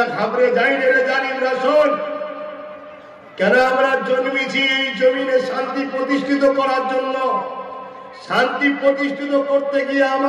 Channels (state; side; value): identical; both; correlation 1.00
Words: ঘাবড়ে যায় রে জালিম রাসূল। কেন আমরা জন্মেছি এই জমিনে শান্তি প্রতিষ্ঠিত করার জন্য। শান্তি প্রতিষ্ঠিত করতে গিয়ে